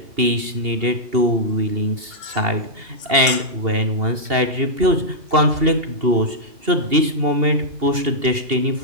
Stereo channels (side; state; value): left; late; 2.8 ms